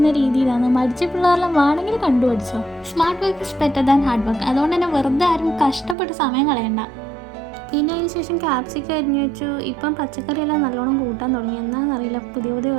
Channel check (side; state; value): left; drops out; at 6.0 s